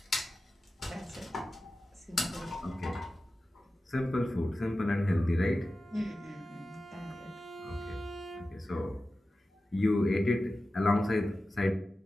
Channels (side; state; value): both; normal; correlation 0.94